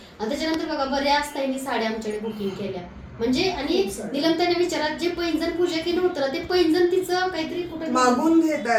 बघा बऱ्याच ताईंनी साड्या आमच्याकडे बुकिंग केल्या. म्हणजे आणि निलमताईने विचारात जे पैंजण पूजा केलं होतं ना, ते पैंजण तिचं काहीतरी कुठे मागून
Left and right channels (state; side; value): identical; both; correlation 1.00